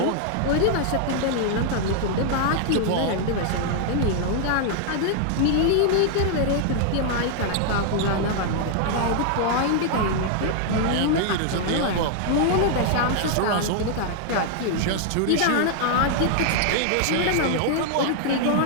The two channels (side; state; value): both; different; correlation 0.00